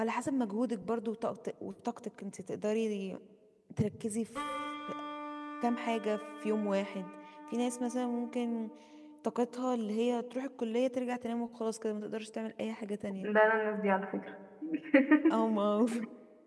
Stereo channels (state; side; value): identical; both; correlation 1.00